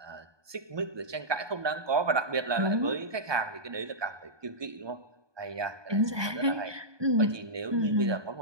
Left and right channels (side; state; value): left; late; 1.2 ms